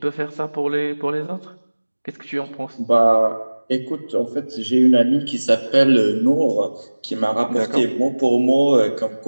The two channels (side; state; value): both; inverted; correlation -1.00